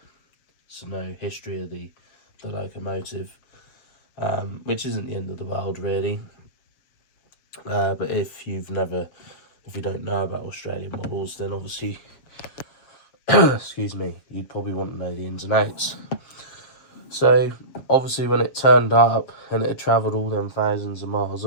so no history of the locomotive, which isn't the end of the world, really. But if you don't know about Australian models, then obviously excuse me, you'd probably want to know the ins and outs. So obviously when it turned up and it had travelled all them thousands of miles,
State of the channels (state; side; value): late; right; 7.1 ms